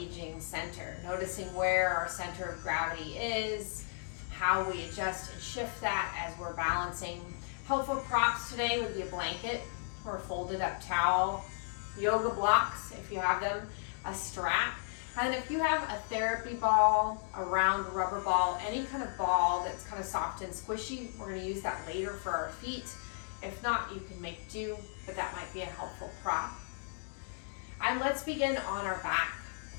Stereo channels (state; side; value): silent; right; digital silence